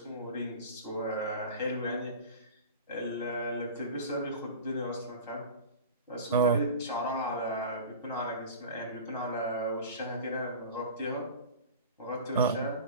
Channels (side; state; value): both; inverted; correlation -0.34